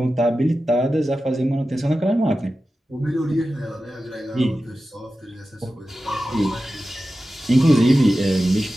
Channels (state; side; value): normal; both; correlation 0.94